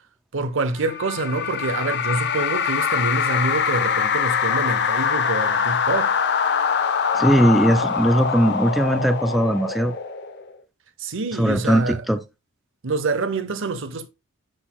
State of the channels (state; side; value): normal; both; correlation 0.36